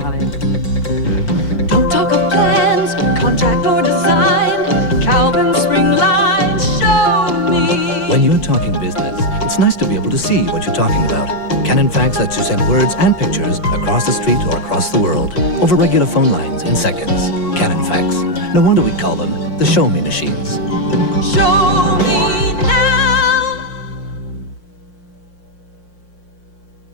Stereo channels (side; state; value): right; late; 5.6 ms